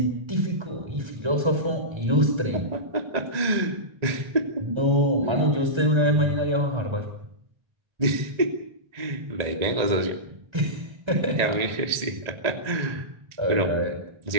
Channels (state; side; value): late; left; 1.8 ms